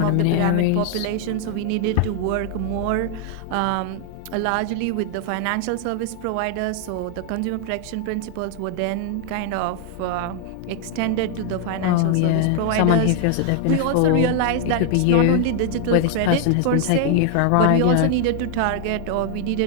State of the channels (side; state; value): both; different; correlation 0.00